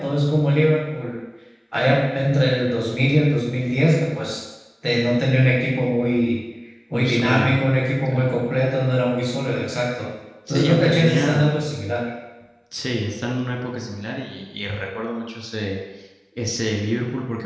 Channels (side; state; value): both; identical; correlation 1.00